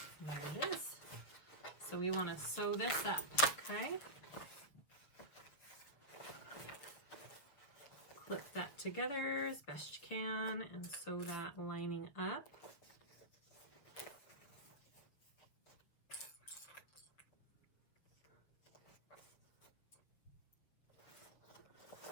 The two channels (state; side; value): late; right; 6.8 ms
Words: There it is. So we want to sew this up, okay? Clip that together as best you can and sew that lining up.